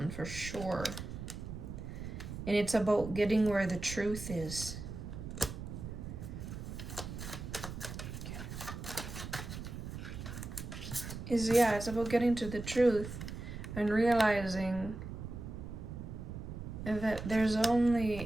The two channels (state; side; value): noise; right; rumble, 8 dB below the sound